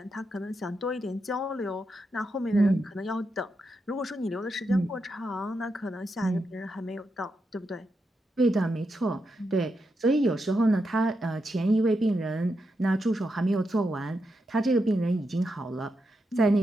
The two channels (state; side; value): normal; both; correlation 0.85